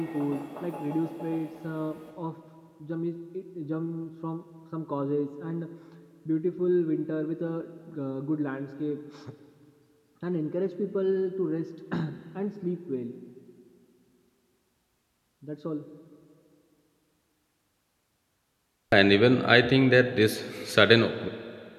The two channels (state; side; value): identical; both; correlation 1.00